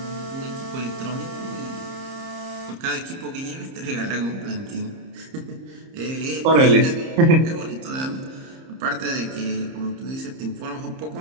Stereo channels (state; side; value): late; left; 30 ms